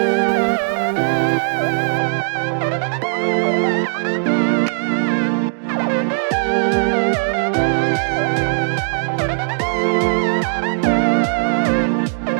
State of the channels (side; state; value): left; silent; digital silence